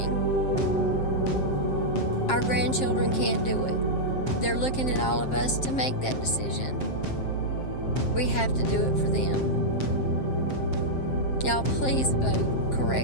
Our grandchildren can't do it. They're looking at all of us to make that decision. We have to do it for them. Y'all, please vote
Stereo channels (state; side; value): late; right; 7.6 ms